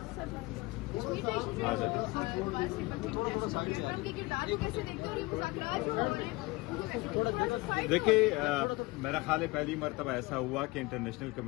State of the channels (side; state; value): right; quieter; 22.6 dB